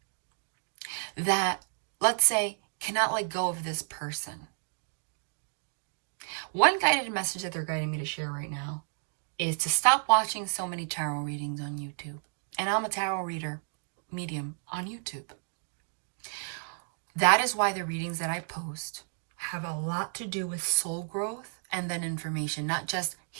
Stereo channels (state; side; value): silent; left; 57 dB below the other